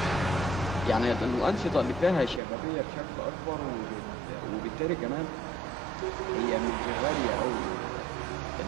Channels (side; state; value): left; drops out; at 2.4 s